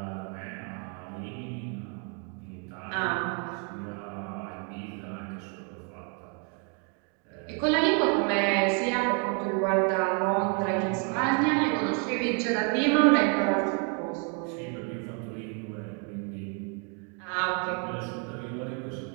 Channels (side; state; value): left; quieter; 38.3 dB